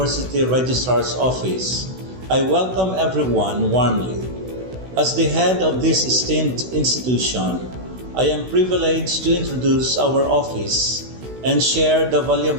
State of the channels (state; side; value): late; left; 16 ms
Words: Registrar's Office, I welcome everyone warmly. As the head of this esteemed institution, I am privileged to introduce our office and share the